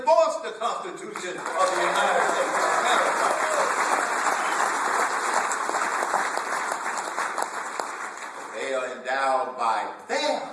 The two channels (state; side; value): identical; both; correlation 1.00